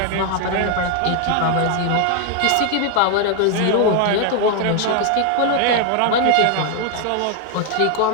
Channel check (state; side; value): different; both; correlation 0.00